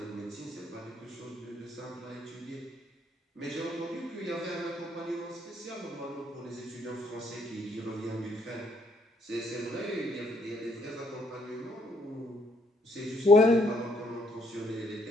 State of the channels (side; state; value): both; normal; correlation 0.69